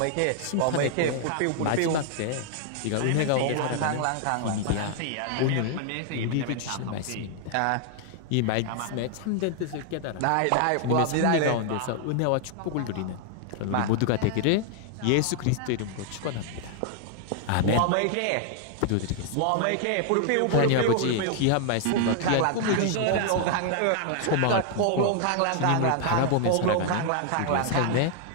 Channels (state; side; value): different; both; correlation 0.00